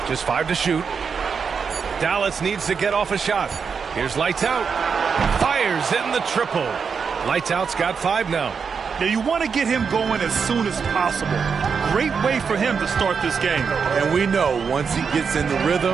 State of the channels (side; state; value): left; quieter; 6.0 dB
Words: Just 5 to shoot. Dallas needs to get off a shot. Here's lights out. Fires in the triple. Lights out's got 5 now. Now you want to get him going as soon as possible. Great way for him to start this game. And we know once he gets in the